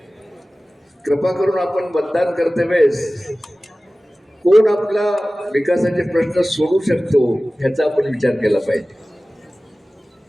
कृपा करून आपण मतदान करते वेळेस कोण आपला विकासाचे प्रश्न सोडवू शकतो ह्याचा आपण विचार केला पाहिजे.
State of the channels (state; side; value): normal; both; correlation 0.97